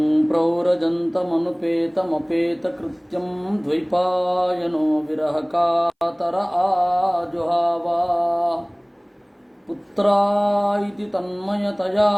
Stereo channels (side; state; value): both; identical; correlation 1.00